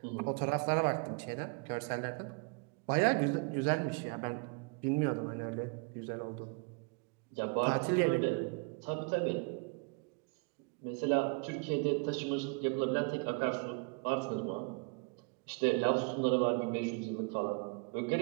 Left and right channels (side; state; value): left; quieter; 32.9 dB